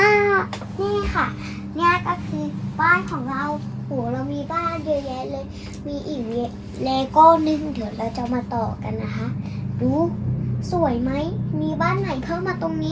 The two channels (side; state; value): both; identical; correlation 1.00